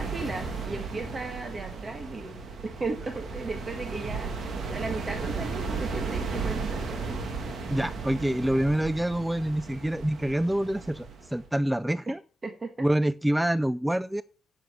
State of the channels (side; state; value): both; normal; correlation 0.92